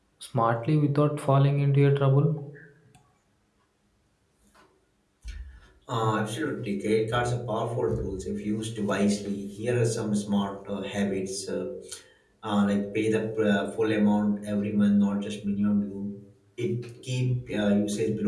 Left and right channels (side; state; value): both; identical; correlation 1.00